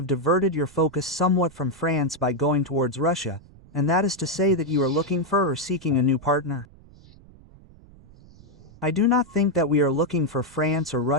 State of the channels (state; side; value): noise; right; rumble, 23 dB below the sound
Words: diverted your focus somewhat from France by going towards Russia, and that is to say that you are looking for or seeking a new partner. I do not think that we are looking for France or